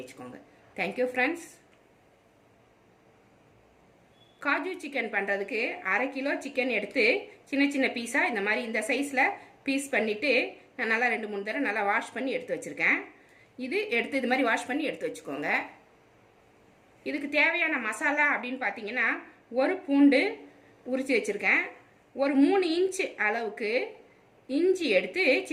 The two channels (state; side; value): identical; both; correlation 1.00